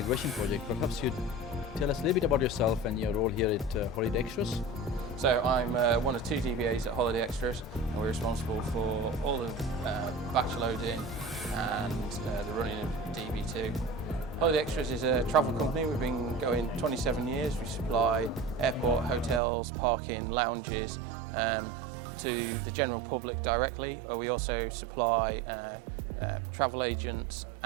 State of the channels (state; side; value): drops out; left; at 19.4 s